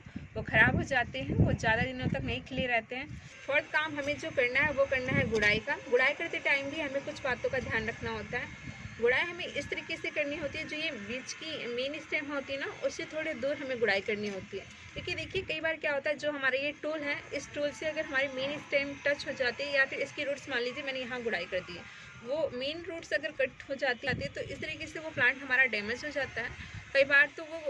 वो ख़राब हो जाते हैं, वो ज़्यादा दिनों तक नहीं खिले रहते हैं। फोर्थ काम हमें जो करना है वो करना है गुड़ाई का। गुड़ाई करते टाइम भी हमें कुछ बातों का ध्यान रखना होता है। गुड़ाई हमें इस तरीके से करनी होती है, जो ये बीच की मेन स्टेम होती है ना उससे थोड़े दूर हमें गुड़ाई करनी होती है। क्योंकि देखिए कई बार क्या होता है, जो हमारा ये टूल है, इस टूल से अगर हमारी मेन स्टेम टच हो जाती है या फिर इसकी रूट्स, मान लीजिए मैंने यहाँ गुड़ाई कर दी है, वो मेन रूट्स अगर कट हो जाती है तो इस तरीके से वो प्लांट हमारा डैमेज हो जाता है। कई बार तो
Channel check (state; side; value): identical; both; correlation 1.00